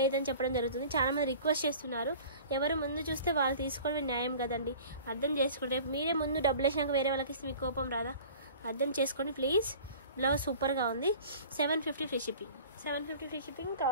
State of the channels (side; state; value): both; inverted; correlation -0.43